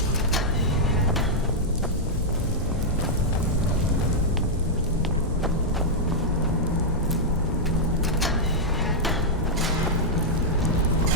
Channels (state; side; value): normal; both; correlation -0.05